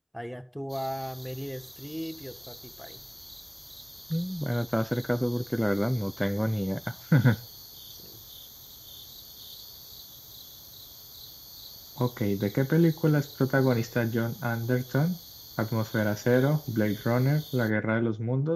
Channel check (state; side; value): identical; both; correlation 1.00